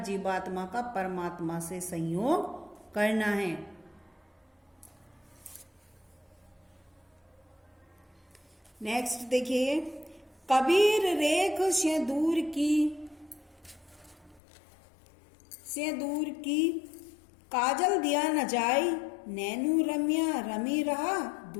जीवात्मा का परमात्मा से संयोग करना है। नेक्स्ट देखिए, कबीर रेख से दूर की काजल दिया न जाई, नैनू रम्या रमी रहा,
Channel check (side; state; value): right; drops out; at 14.4 s